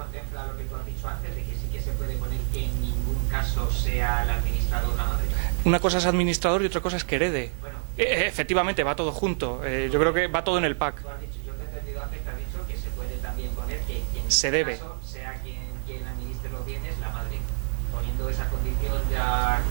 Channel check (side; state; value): left; silent; 60 dB below the other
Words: lo que tú has dicho antes, de que sí que se puede poner que en ningún caso sea el administrador la madre? Una cosa es administrador y otra cosa es que herede. Bueno, efectivamente, va todo junto. Yo creo que va todo en el pack. Tú has dicho, yo te he entendido antes que has dicho que se puede también poner que en se debe. Caso sea quien administre los bienes, la madre. Poniendo esa condición ya